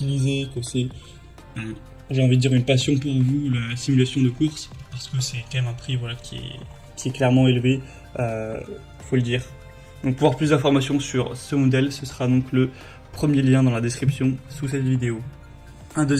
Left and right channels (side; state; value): both; identical; correlation 1.00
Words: que c'est, j'ai envie de dire, une passion pour vous, la simulation de course, parce que c'est quand même un prix qui est clairement élevé, faut le dire. Donc pour avoir plus d'informations sur ce modèle, ce sera donc le premier lien dans la description sous cette vidéo. Un